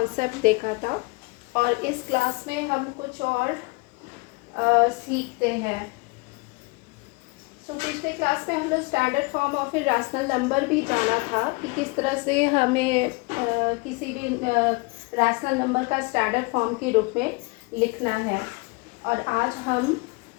देखा था और इस क्लास में हम कुछ और सीखते हैं। पिछले क्लास में हम लोग standard form of a rational number भी जाना था कि किस तरह से हमें किसी भी रैशनल नंबर का स्टैंडर्ड फॉर्म के रूप में लिखना है। और आज हम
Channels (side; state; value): right; quieter; 27.7 dB